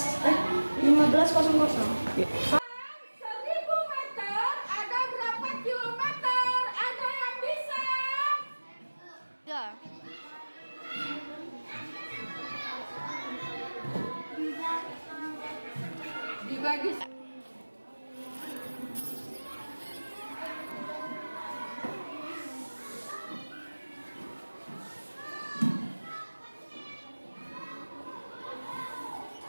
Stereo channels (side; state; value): both; inverted; correlation -1.00